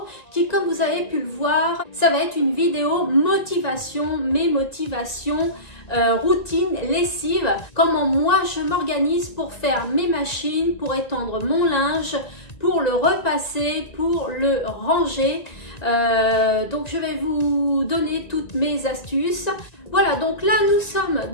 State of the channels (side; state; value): right; late; 1.9 ms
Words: qui, comme vous avez pu le voir, ça va être une vidéo motivation, mes motivations, routine, lessive, comment moi je m'organise pour faire mes machines, pour étendre mon linge, pour le repasser, pour le ranger. Donc je vais vous donner toutes mes astuces. Voilà, donc là nous sommes